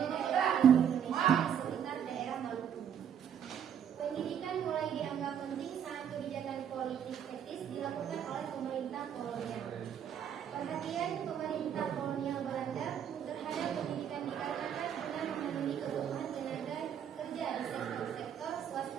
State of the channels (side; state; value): left; quieter; 8.7 dB